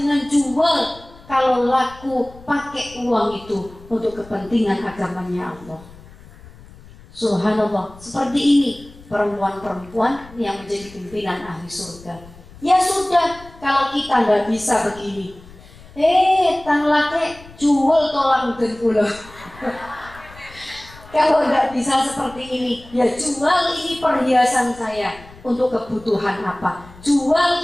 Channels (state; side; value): noise; left; rumble, 21 dB below the sound